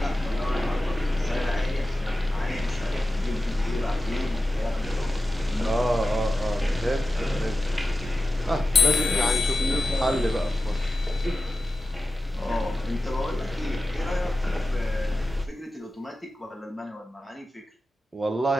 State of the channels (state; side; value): normal; both; correlation 0.93